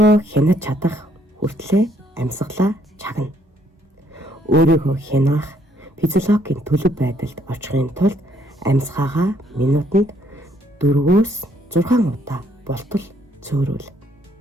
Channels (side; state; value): both; normal; correlation 0.68